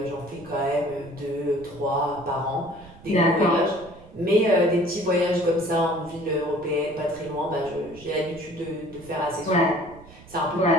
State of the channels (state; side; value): noise; right; rumble, 21 dB below the sound